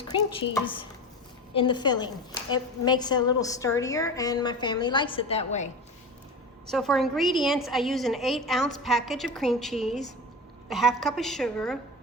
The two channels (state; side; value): normal; both; correlation 0.28